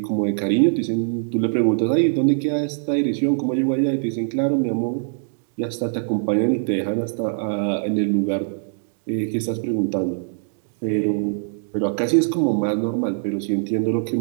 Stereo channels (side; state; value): left; silent; digital silence